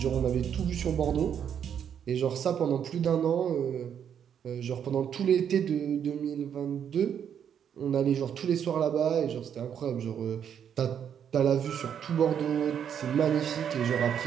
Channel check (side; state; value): left; quieter; 8.5 dB